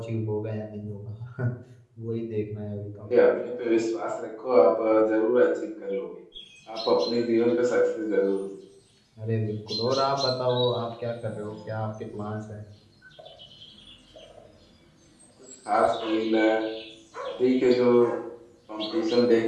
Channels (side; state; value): both; identical; correlation 1.00